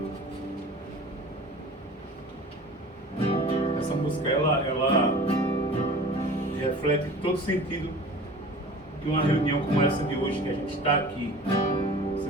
Essa música, ela reflete todo o sentido que que uma reunião como essa de hoje, que a gente está aqui,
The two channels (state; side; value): normal; both; correlation 0.41